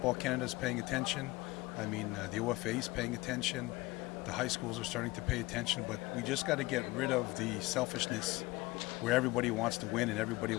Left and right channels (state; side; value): quieter; right; 20.7 dB